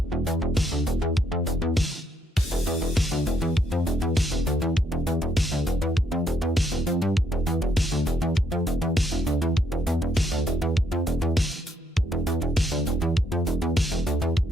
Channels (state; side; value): normal; both; correlation 0.73